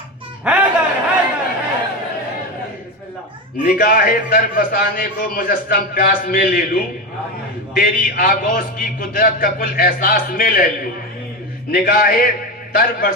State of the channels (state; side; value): normal; both; correlation 0.18